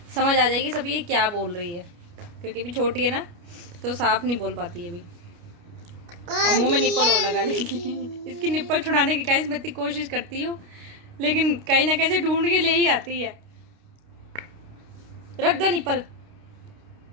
समझ आ जाएगी सब ये क्या बोल रही है, क्योंकि अभी छोटी है ना तो साफ नहीं बोल पाती है अभी। और मुंह में निप्पल और लगा लेगी। इसकी निप्पल छुड़ाने की गाइस मैं इतनी कोशिश करती हूँ, लेकिन कहीं ना कहीं से ढूंढ के ले ही आती है। रख दो निप्पल।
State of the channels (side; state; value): left; late; 29 ms